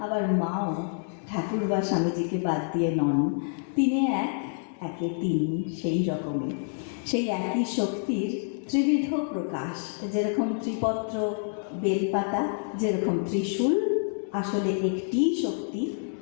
আবার মাও ঠাকুর বা স্বামীজিকে বাদ দিয়ে নন। তিনে এক, একে তিন, সেই রকমই সেই একই শক্তির ত্রিবিধ প্রকাশ। যেরকম ত্রিপত্র বেলপাতা, যেরকম ত্রিশূল, আসলে একটি শক্তি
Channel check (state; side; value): silent; right; digital silence